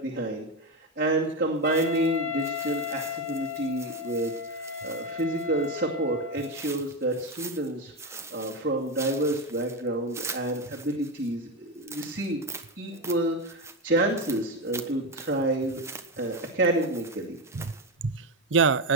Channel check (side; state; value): both; normal; correlation 0.12